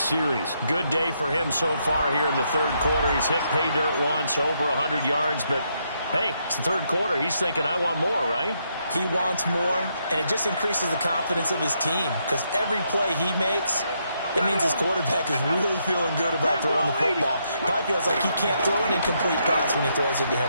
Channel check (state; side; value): inverted; both; correlation -0.77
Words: series. Good day for him so far here in the 3rd quarter. He's hit pay dirt once, over 100 yards, but hey, it's the 3rd quarter. He's thinking, I want more, right? He wants more, and it just increases the confidence of his team because every play he makes, it means his quarterback is really feeling good about throwing the football. Probably feels like he can't throw an incomplete pass when he throws it to